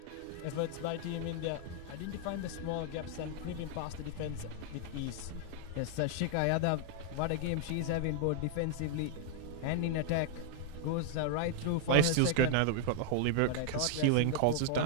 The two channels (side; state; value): both; different; correlation 0.00